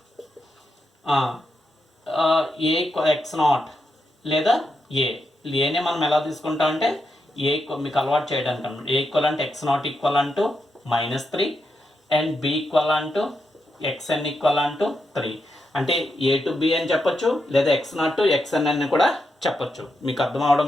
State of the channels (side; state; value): both; normal; correlation 0.84